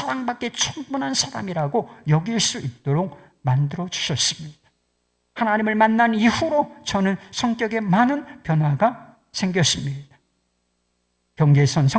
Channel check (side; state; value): both; identical; correlation 1.00